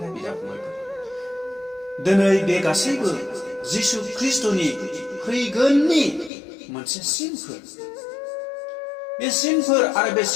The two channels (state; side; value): drops out; right; at 6.3 s